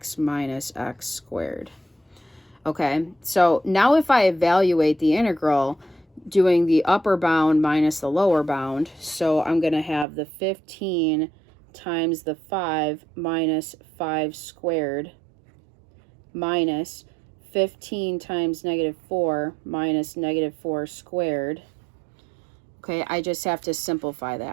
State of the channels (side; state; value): left; drops out; at 10.1 s